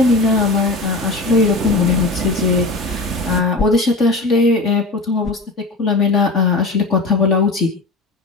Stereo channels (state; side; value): quieter; right; 3.1 dB